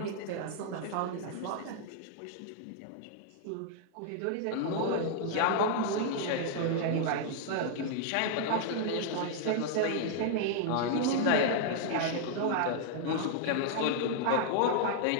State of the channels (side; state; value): both; different; correlation -0.01